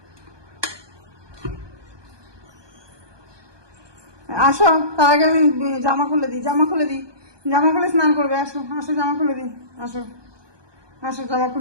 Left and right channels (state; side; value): late; left; 1.2 ms